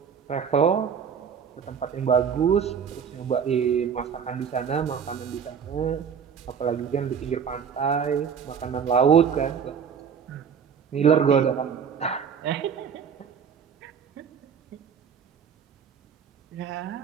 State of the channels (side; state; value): left; quieter; 7.1 dB